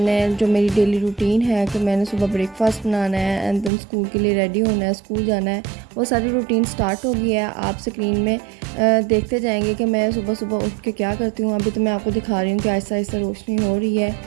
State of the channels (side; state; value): left; drops out; at 3.7 s